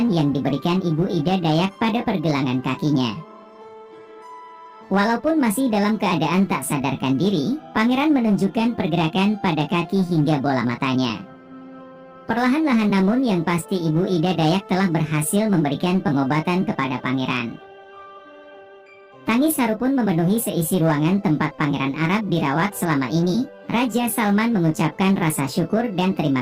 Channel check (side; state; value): both; identical; correlation 1.00